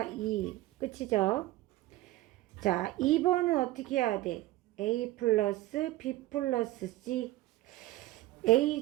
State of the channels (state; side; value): quieter; left; 16.9 dB